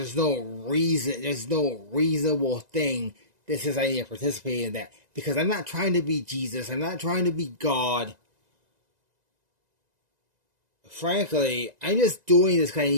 no reasonable thing that says I need to participate in that. Because I'm not trying to be Jesus. I'm not trying to be God. Frankly, I'm just doing this because I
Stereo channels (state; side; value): late; left; 1.9 ms